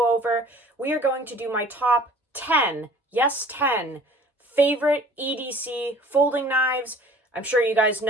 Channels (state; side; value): normal; both; correlation 0.49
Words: over. We are going to do my top 10, yes 10, favorite EDC folding knives. I'm sure you guys